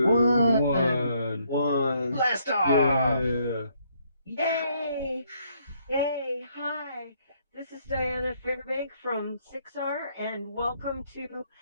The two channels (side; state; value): both; inverted; correlation -0.70